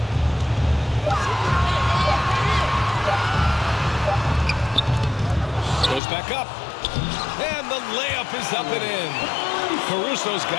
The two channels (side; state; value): right; drops out; at 6.0 s